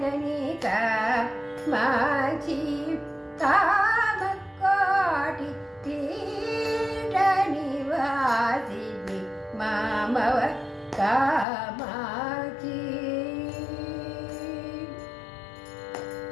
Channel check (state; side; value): drops out; right; at 11.5 s